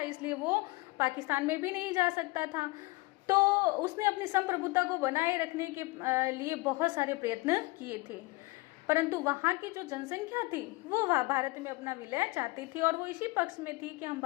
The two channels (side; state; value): right; quieter; 23.2 dB